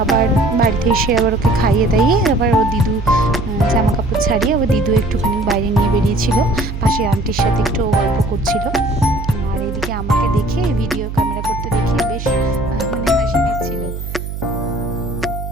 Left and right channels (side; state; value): right; noise; hum, 7 dB below the sound